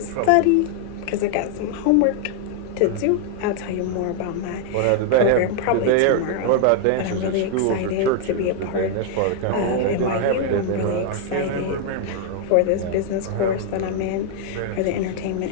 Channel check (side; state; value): both; different; correlation 0.00